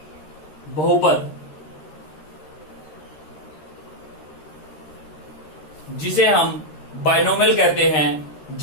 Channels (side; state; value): right; late; 13 ms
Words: बहुपद, जिसे हम बाइनोमियल कहते हैं,